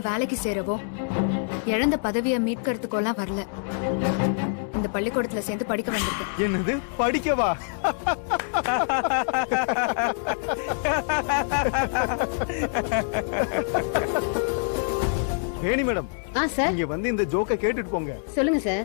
வேலைக்கு சேரவோ இழந்த பதவியை மீட்கிறதுக்கோலாம் வரல. இந்த பள்ளிக்கூடத்துல சேர்ந்து படிக்க வந்திருக்கேன். என்னது, படிக்கவா? வேணி மேடம், சார், இங்க வந்து இந்த ஜோக்க கேட்டுட்டு போங்க. சொல்லுங்க சார்.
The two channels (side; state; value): right; silent; 61 dB below the other